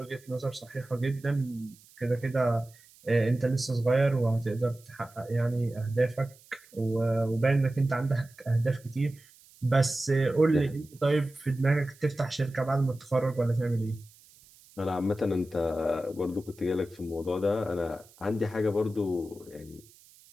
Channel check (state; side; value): noise; right; hiss, 26 dB below the sound